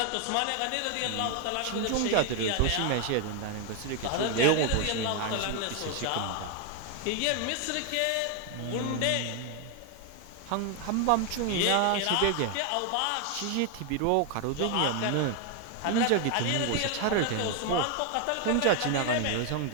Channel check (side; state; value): both; different; correlation 0.01